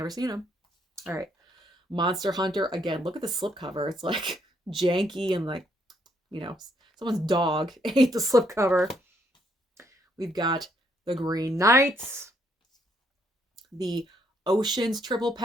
seen them. All right. Monster Hunter. Again, look at the slipcover. It's like janky and like, you know, someone's dog ate the slipcover. We've got The Green Knights. The Oceans triple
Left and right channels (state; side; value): normal; both; correlation 0.71